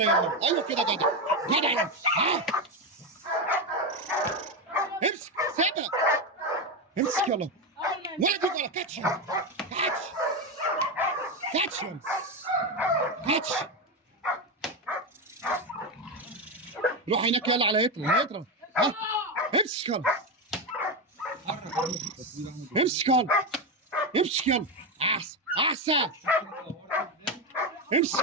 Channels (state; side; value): normal; both; correlation 0.12